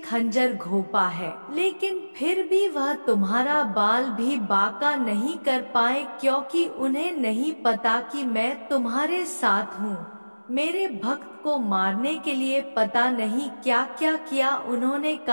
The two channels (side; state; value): both; inverted; correlation -1.00